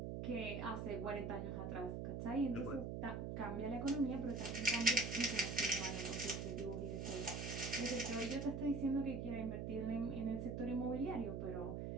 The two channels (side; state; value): right; noise; hum, 3 dB below the sound